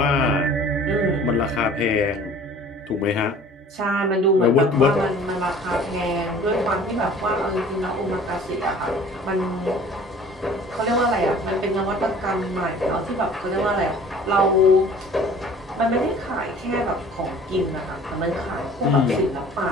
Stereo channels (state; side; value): normal; both; correlation 0.48